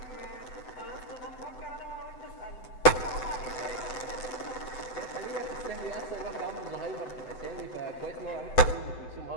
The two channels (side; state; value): right; late; 7.9 ms